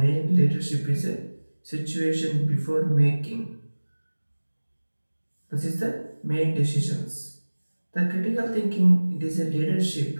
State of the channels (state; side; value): inverted; both; correlation -1.00